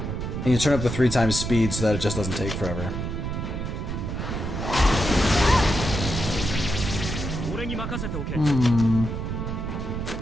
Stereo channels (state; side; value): noise; right; rumble, 4 dB below the sound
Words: And you turn up the 3 times speed so that it just doesn't take forever.